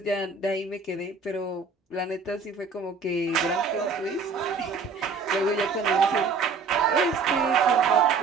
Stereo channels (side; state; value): left; quieter; 4.7 dB